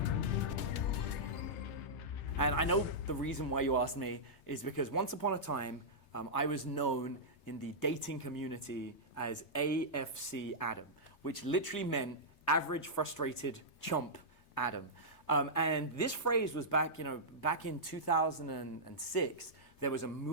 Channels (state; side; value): late; right; 3.3 ms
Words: And I know the reason why you asked me is because once upon a time, I was known in the dating community as AFC Adam, which literally meant average frustrated chump Adam. And this phrase was back in 2006, there was a